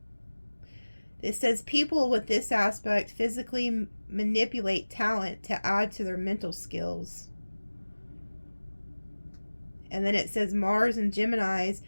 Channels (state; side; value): inverted; both; correlation -1.00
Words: people with this aspect physically manipulate talent to add to their mental skills. And then it says Mars and Geminis